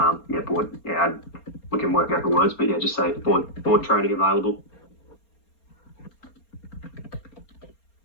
Board. Yeah, we can work out the words, but yeah, just say board training available.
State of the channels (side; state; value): right; late; 4.3 ms